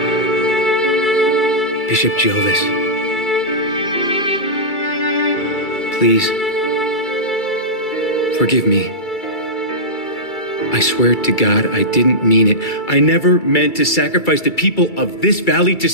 Bishop Jovis. Please. Forgive me. I swear to God I didn't mean it. I never meant to sacrifice the people of this valley to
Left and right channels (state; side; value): late; right; 2.3 ms